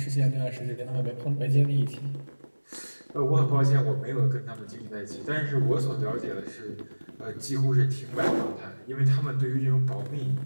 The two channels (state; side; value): inverted; both; correlation -1.00